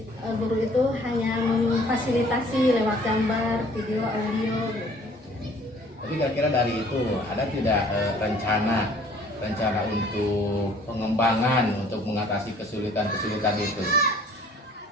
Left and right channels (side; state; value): both; normal; correlation 0.55